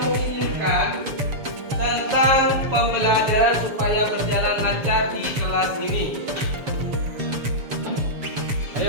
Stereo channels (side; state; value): left; late; 7.0 ms